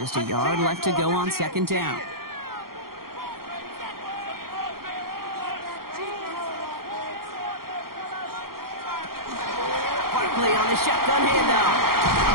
a yard left to go on 2nd down. Barkley on the shotgun handoff.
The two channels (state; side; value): late; left; 0.93 ms